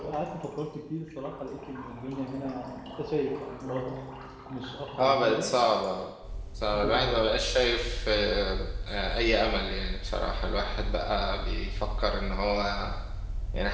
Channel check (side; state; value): both; identical; correlation 1.00